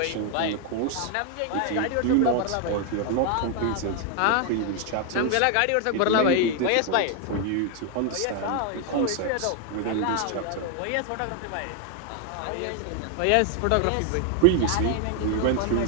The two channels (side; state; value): both; different; correlation 0.01